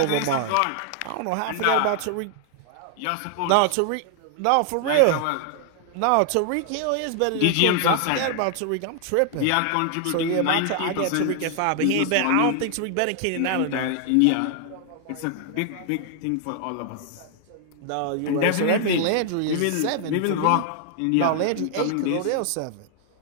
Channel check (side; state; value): both; different; correlation 0.00